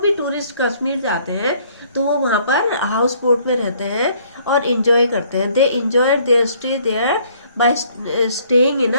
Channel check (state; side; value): inverted; both; correlation -0.62